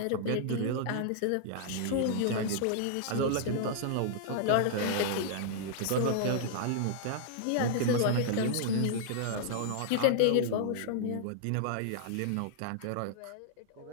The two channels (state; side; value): different; both; correlation -0.01